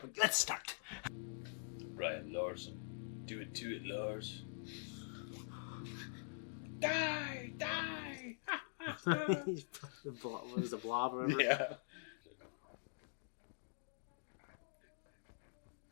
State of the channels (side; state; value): right; silent; digital silence